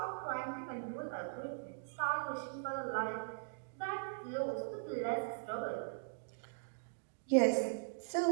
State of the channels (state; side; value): silent; left; digital silence